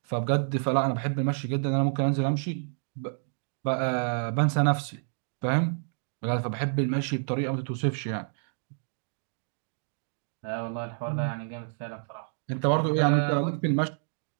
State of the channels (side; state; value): left; silent; digital silence